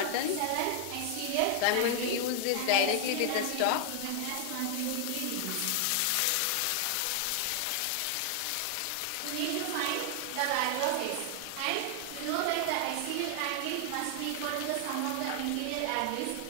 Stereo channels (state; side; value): different; both; correlation 0.00